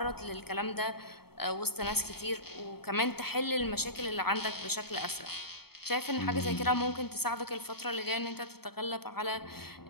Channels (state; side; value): late; right; 0.96 ms